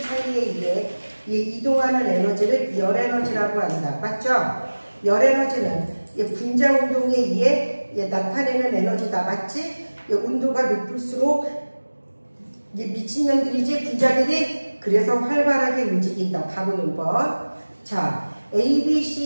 의해 이동하는 에너지를 열에너지라고 한다. 맞죠? 열에너지는 분자 운동에 의해 나타내는 에너지다. 맞지? 온도가 높을수록 미친년들이지 분자들이 그래서 활발하게 움직인다. 답은 5번. 자, A, B,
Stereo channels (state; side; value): inverted; both; correlation -1.00